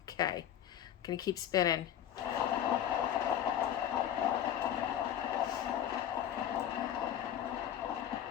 Okay, I'm gonna keep spinning.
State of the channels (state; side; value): quieter; right; 10.6 dB